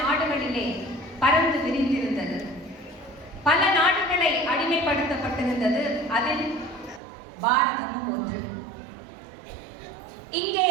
பறந்து விரிந்திருந்தது. பல நாடுகளை அடிமைப்படுத்தப்பட்டிருந்தது. அதில் பாரதமும் ஒன்று. இங்கே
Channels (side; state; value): left; drops out; at 7.0 s